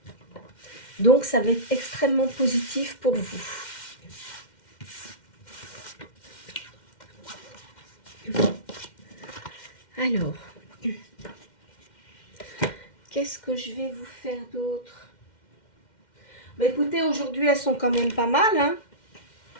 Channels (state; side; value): late; right; 2.1 ms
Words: ? Donc, ça va être extrêmement positif pour vous. Alors, qu'est-ce que je vais vous faire d'autre? Bah, écoutez, aujourd'hui, elles sont quand même pas mal, hein.